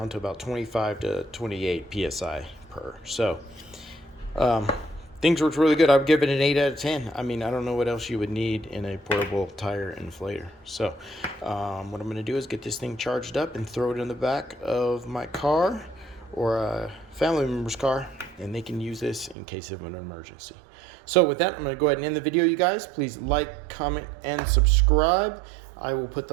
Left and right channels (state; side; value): drops out; left; at 19.4 s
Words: to about 25 to 28 psi per. So things worked really good. I would give it an 8 out of 10. I mean, I don't know what else you would need in a portable tire inflator. So what I'm going to do is get this thing charged up and throw it in the back of my car or a family member's car, and they can use this in case of an emergency. So with that, I'm going to go ahead and end the video, you guys. Please like, comment, and subscribe. I will put